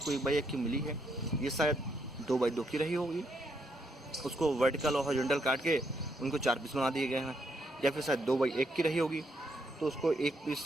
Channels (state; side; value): normal; both; correlation 0.76